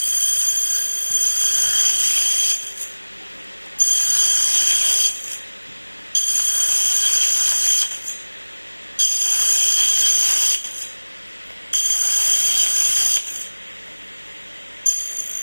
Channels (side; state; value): both; inverted; correlation -1.00